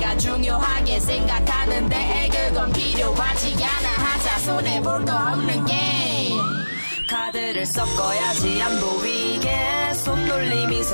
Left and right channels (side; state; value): both; inverted; correlation -1.00